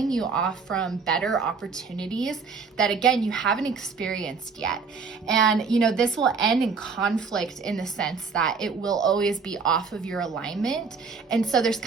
you off from better opportunities that, again, you haven't experienced yet. And this will end in conflict in the sense that it will always be off of your alignment. And so there's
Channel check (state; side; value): quieter; left; 5.1 dB